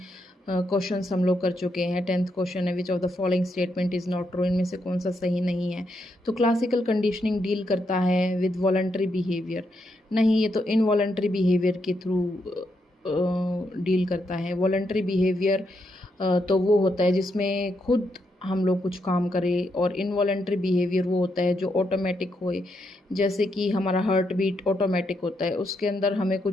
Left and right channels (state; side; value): normal; both; correlation 0.80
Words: क्वेश्चंस हम लोग कर चुके हैं। 10th क्वेश्चन है, which of the following statement is not true, इनमें से कौन सा सही नहीं है। तो क्लासिकल कंडीशनिंग डील करता है विद वॉलंटरी बिहेवियर, नहीं ये तो इनवॉलंटरी बिहेवियर के थ्रू डील करता है। वॉलंटरी बिहेवियर तो वो होता है जिसमें खुद हम लोग कुछ काम करें, और इनवॉलंटरी बिहेवियर वो होता है जो ऑटोमेटिक होए। जैसे कि हमारा हार्ट बीट ऑटोमेटिक होता है, उसके अंदर हमें